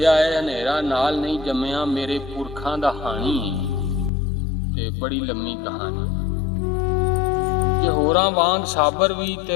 है हनेरा नाल नहीं जम्मिया। मेरे पुरखां दा हानी ते बड़ी लम्मी कहानी। जे होरां वांग साबर भी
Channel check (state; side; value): drops out; right; at 4.1 s